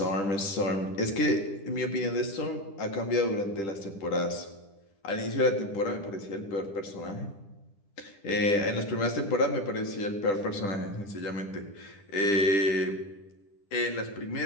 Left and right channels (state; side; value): late; right; 10 ms